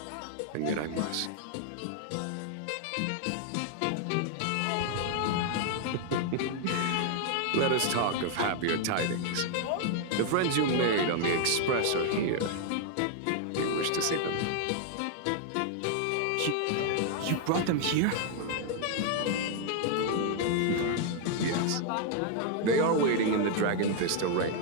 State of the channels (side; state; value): both; different; correlation 0.00